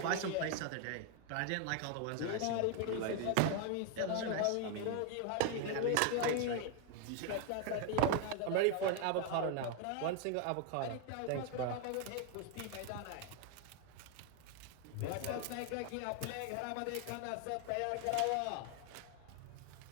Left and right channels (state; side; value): different; both; correlation 0.01